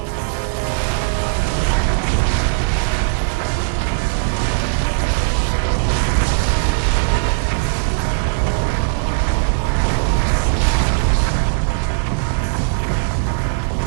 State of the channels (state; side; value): silent; left; digital silence